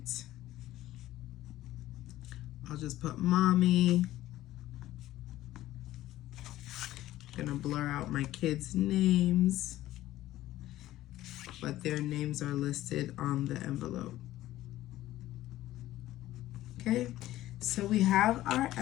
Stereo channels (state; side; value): quieter; right; 14.9 dB